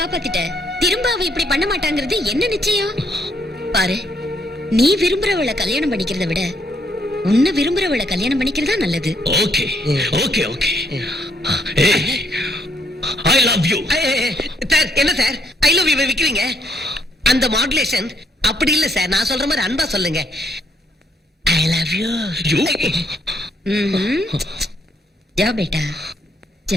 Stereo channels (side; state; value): both; normal; correlation 0.72